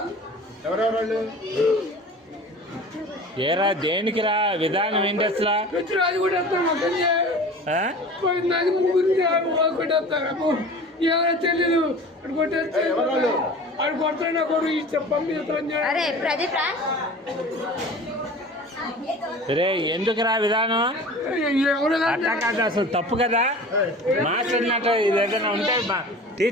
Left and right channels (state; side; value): normal; both; correlation 0.39